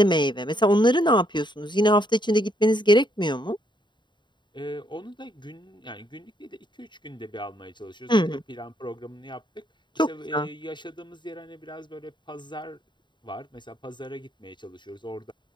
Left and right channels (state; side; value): late; right; 0.22 ms